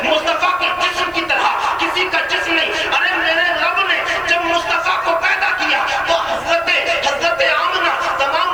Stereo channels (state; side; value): noise; right; hiss, 29 dB below the sound